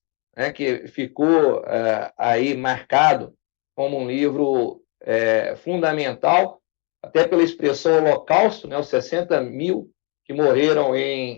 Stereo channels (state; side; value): quieter; right; 34.1 dB